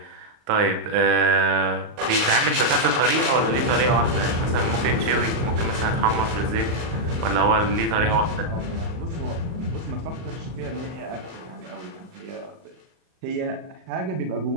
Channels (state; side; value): late; left; 38 ms